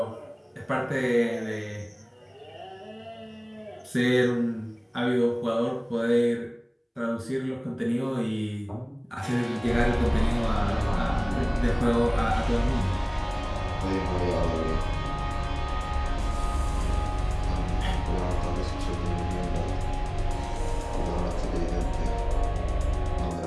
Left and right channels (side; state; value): both; identical; correlation 1.00